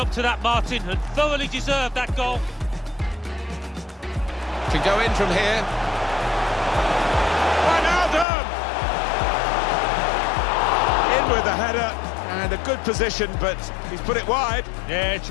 to that, Martin, and thoroughly deserved that goal. Can go in from here. Wijnaldum! In with the header, and a good position, but he's put it wide. Yeah, it's a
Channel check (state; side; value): drops out; right; at 8.2 s